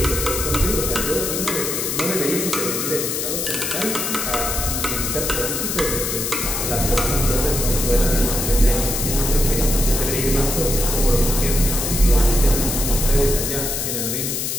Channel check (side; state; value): left; noise; hiss, 2 dB below the sound